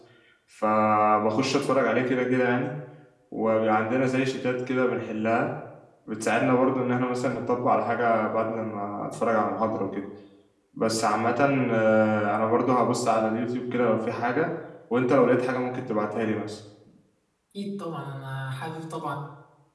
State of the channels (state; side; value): identical; both; correlation 1.00